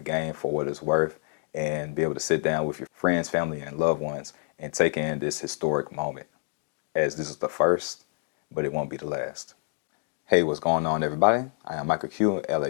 game for what it's worth and be able to sit down with your friends, family, and loved ones and take in this historic moment, as this is the first, but it won't be the last. Hey, what's going on, everybody? I am Michael Q,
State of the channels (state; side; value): silent; right; 55 dB below the other